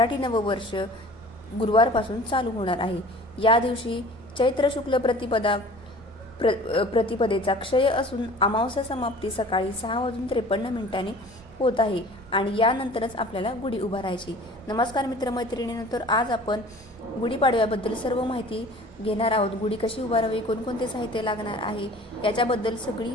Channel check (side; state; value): right; noise; rumble, 23 dB below the sound